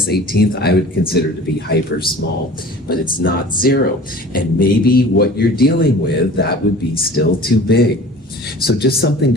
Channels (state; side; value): normal; both; correlation 0.43